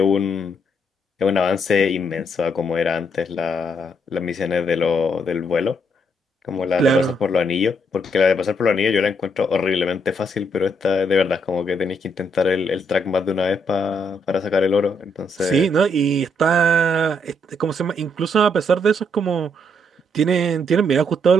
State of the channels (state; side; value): normal; both; correlation 0.74